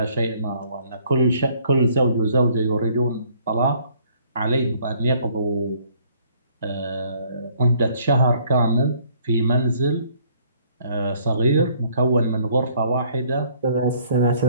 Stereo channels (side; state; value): both; inverted; correlation -0.62